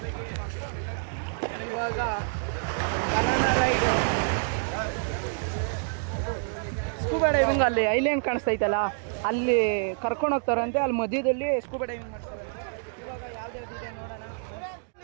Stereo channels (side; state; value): left; silent; digital silence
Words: ಇವಾಗ ಬನಾನಾ ರೈಡ್ ಸ್ಕೂಬಾ ಡೈವಿಂಗ್ ಅಲ್ಲಿ ಐಲ್ಯಾಂಡ್ ಕಾಣಿಸ್ತೈತಲ್ಲ ಅಲ್ಲಿ ಕರ್ಕೊಂಡು ಹೋಗ್ತಾರಂತೆ ಅಲ್ಲಿ ಮಧ್ಯದಲ್ಲಿ ಸ್ಕೂಬಾ ಡೈವಿಂಗ್ ಮಾಡ್ತಾರೆ ಇವಾಗ ಯಾವ್ದಾವ್ದಿದೆ ನೋಡೋಣ